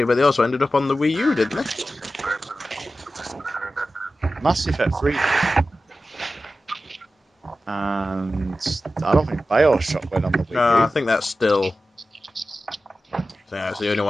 but they also ended up on the Wii U, didn't they? Mass Effect 3. And I don't think BioShock went on the Wii No, U. I think that's still. I think that's the only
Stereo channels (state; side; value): normal; both; correlation 0.93